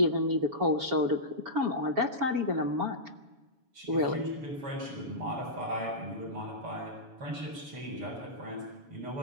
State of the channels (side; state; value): left; late; 7.1 ms